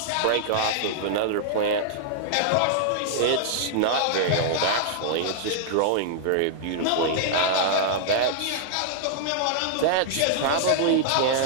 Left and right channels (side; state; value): both; different; correlation -0.01